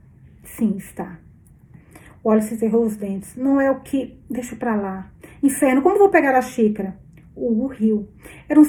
está. Wallace cerrou os dentes. Não é o que... Deixa pra lá. Inferno, como vou pegar a xícara? Hugo riu. Era um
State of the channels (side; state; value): both; identical; correlation 1.00